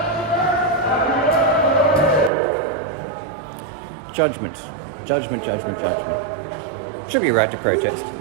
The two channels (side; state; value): left; drops out; at 2.3 s